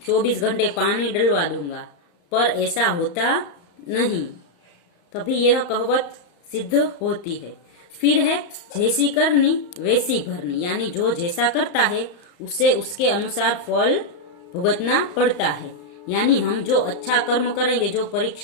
24 घंटे पानी डलवा दूंगा, पर ऐसा होता नहीं, कभी यह कहावत सिद्ध होती है। फिर है जैसी करनी वैसी भरनी, यानी जो जैसा करता है उसे उसके अनुसार फल भुगतना पड़ता है। यानी हम जो अच्छा कर्म करेंगे, जो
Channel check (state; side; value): late; right; 34 ms